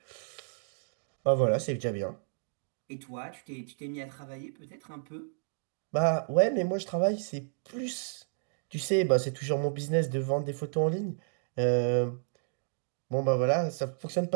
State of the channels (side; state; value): left; silent; digital silence